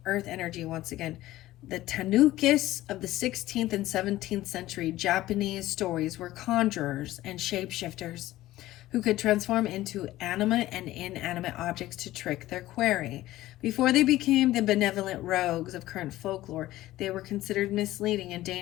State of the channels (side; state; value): right; quieter; 15.8 dB